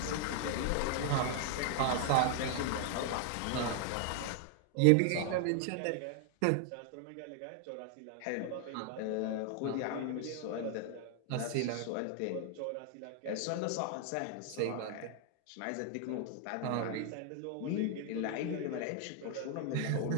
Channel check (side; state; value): both; different; correlation 0.00